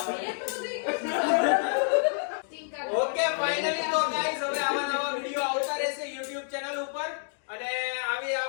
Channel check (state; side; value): silent; right; 59 dB below the other